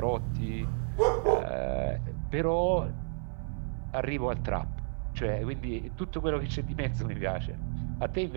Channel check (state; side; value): silent; left; 57 dB below the other